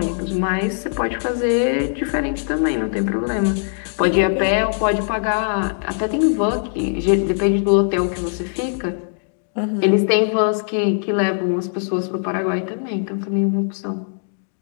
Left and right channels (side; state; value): right; silent; digital silence